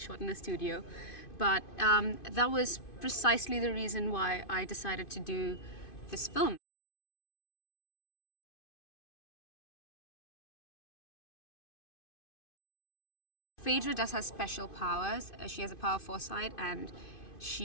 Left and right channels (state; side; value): late; right; 2.5 ms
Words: in a studio. But that was precisely the reason why I decided to do this film. Phaedra does have special powers. She has a power of foresight and